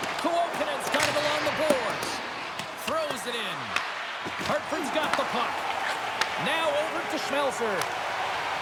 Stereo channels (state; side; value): identical; both; correlation 1.00